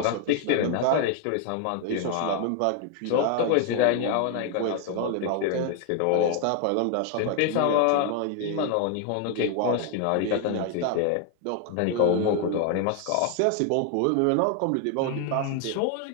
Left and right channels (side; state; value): both; different; correlation 0.00